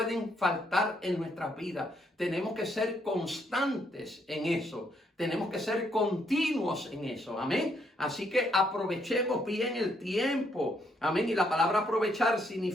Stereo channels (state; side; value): normal; both; correlation 0.73